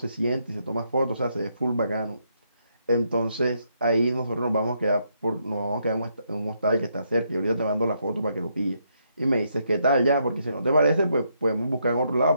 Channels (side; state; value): both; inverted; correlation -0.76